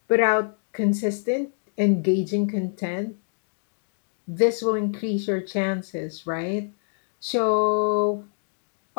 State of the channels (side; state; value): right; silent; digital silence